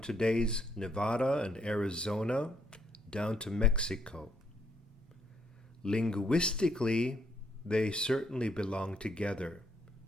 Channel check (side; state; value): both; normal; correlation 0.72